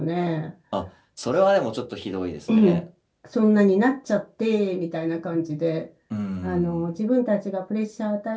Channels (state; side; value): identical; both; correlation 1.00